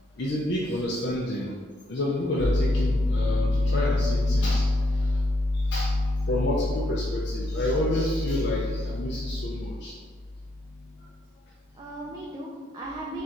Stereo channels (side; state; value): both; normal; correlation 0.76